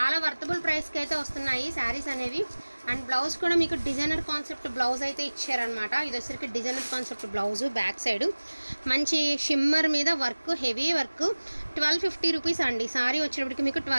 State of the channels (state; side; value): inverted; both; correlation -1.00